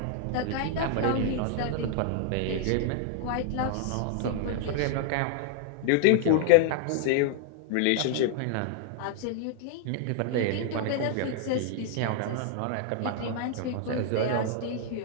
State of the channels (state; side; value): different; both; correlation 0.00